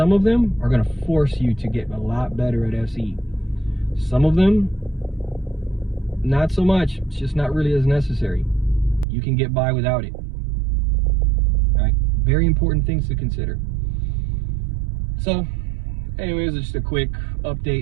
of them are going to force you to get a lot better at SE. Some of them, not so much. It's just not really as necessary. You can get by without it. All right, very important things to consider. So anyways, just a quick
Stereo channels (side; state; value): left; drops out; at 9.1 s